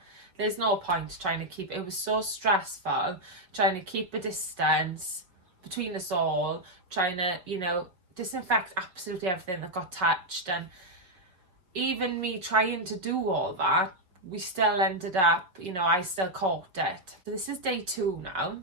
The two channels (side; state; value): left; late; 5.5 ms